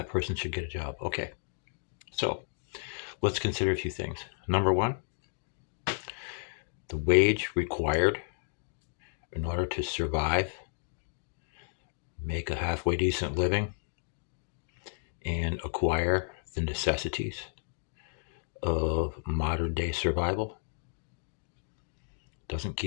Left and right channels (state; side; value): silent; right; digital silence